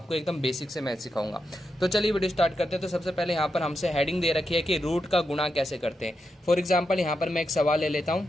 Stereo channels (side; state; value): both; normal; correlation 0.86